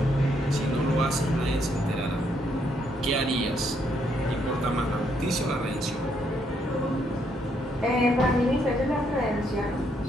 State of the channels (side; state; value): both; normal; correlation 0.73